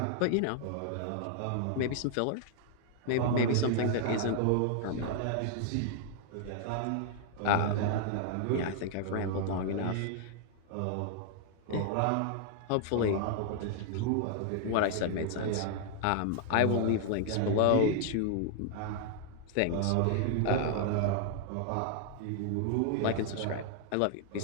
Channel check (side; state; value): both; different; correlation -0.01